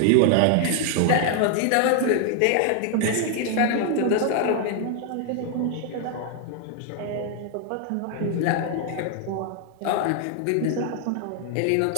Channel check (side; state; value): both; different; correlation 0.00